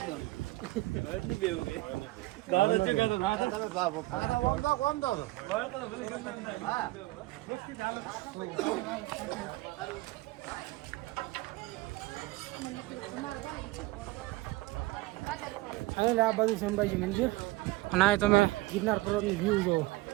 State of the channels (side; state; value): left; quieter; 20.2 dB